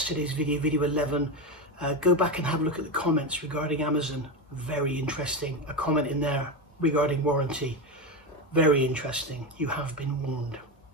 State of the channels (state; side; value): normal; both; correlation 0.16